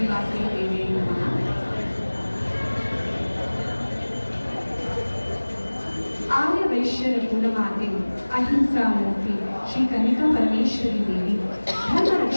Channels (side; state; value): both; inverted; correlation -1.00